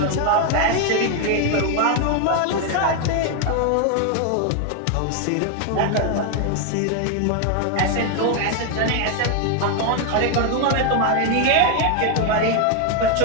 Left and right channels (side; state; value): both; different; correlation 0.01